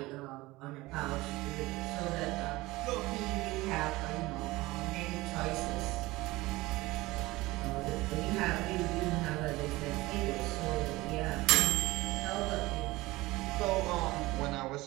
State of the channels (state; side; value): quieter; left; 19.9 dB